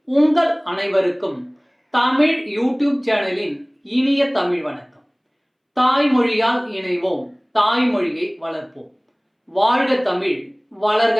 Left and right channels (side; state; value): both; identical; correlation 1.00